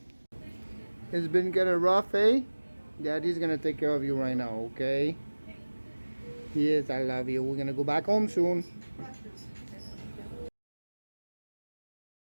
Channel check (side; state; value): both; inverted; correlation -1.00